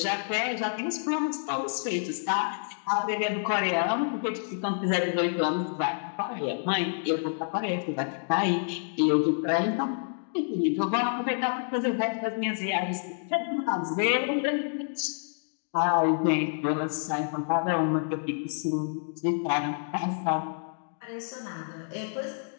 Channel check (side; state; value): right; silent; digital silence